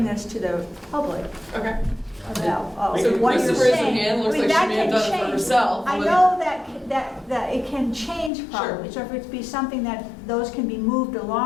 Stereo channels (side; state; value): right; drops out; at 8.3 s